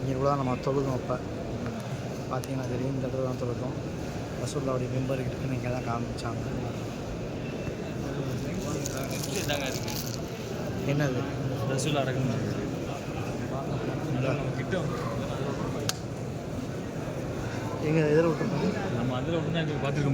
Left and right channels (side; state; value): both; identical; correlation 1.00